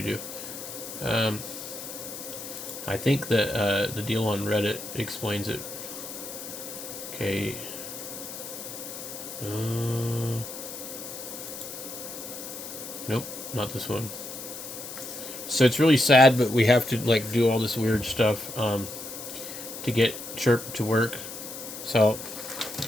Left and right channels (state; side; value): noise; left; hiss, 10 dB below the sound